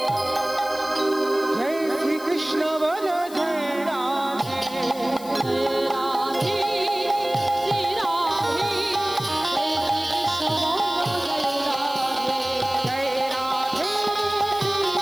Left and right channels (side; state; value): left; noise; hiss, 17 dB below the sound